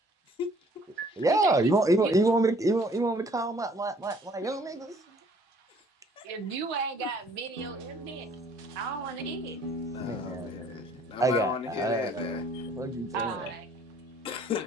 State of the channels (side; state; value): both; normal; correlation 0.58